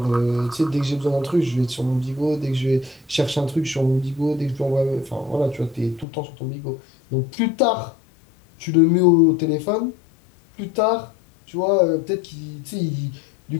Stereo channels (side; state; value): right; drops out; at 6.1 s